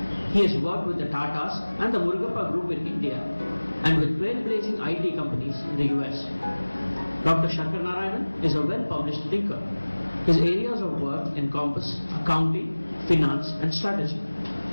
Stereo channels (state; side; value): inverted; both; correlation -1.00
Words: He has worked with the Tatas and the Murugappa Group in India and with trailblazing IT companies in the US. Dr. Sankaranarayanan is a well-published thinker. His areas of work encompass accounting, finance, and strategy.